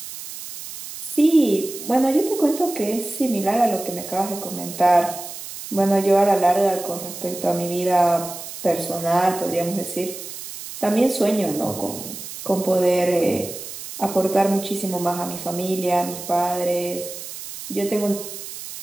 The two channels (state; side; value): noise; right; hiss, 11 dB below the sound